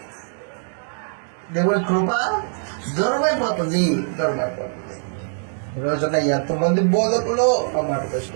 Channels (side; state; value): left; silent; digital silence